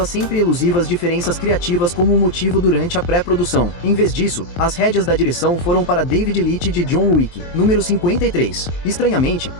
as sempre elusivas diferenças criativas como um motivo durante a pré-produção. Em vez disso, as rédeas da direção foram para David Leitch de John Wick. Número 53. Estranhamente,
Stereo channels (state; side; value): late; right; 23 ms